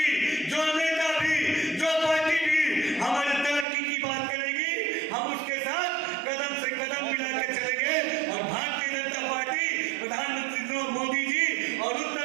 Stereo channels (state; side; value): drops out; left; at 3.7 s